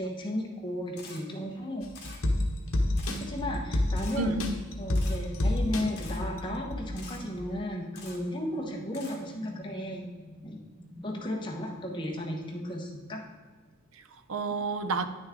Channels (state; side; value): normal; both; correlation 0.72